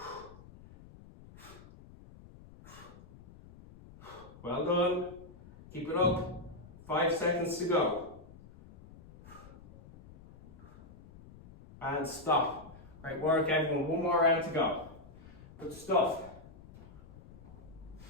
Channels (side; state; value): left; noise; rumble, 19 dB below the sound